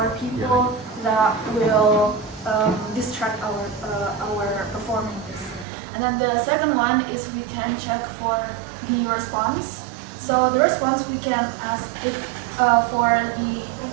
people that will distract our performance. And then the second one is we can check for the response. So the response we can ask if for the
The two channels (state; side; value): drops out; left; at 5.7 s